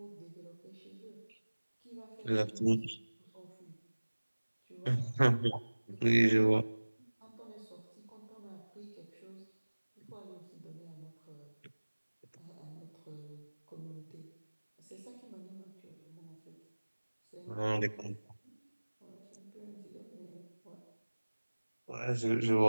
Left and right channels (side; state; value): both; inverted; correlation -1.00